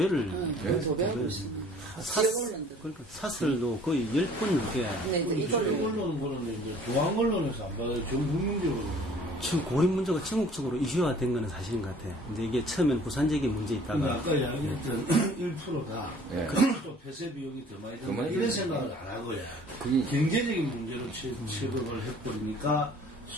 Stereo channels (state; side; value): normal; both; correlation 0.52